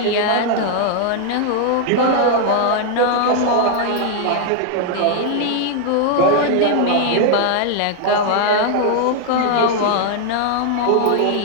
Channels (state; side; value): different; both; correlation 0.00